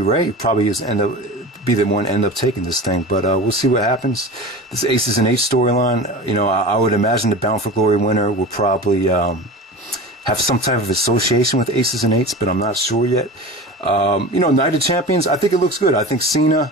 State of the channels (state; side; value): normal; both; correlation 0.33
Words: probably be the one end up taking this thing. But we'll see what happens. This Aces and H storyline, you know, I would imagine the Bound for Glory winner will probably have some type of association with Aces and Eights, but I'm not sure yet. You know, Night of Champions, I think it looks good. I think